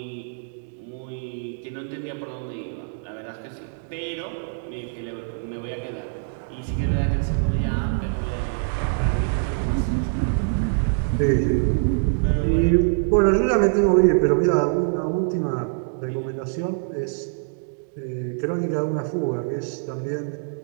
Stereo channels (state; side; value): silent; left; digital silence